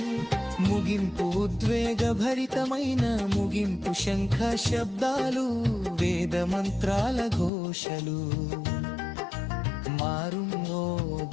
ముగింపు ఉద్వేగభరితమైన ముగింపు శంఖ శబ్దాలు వేద మంత్రాల ఘోషలు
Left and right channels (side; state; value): right; drops out; at 7.5 s